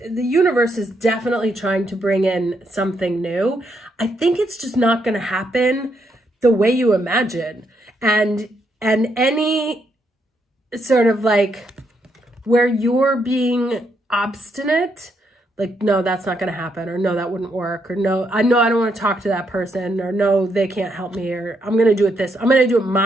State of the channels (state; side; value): normal; both; correlation 0.77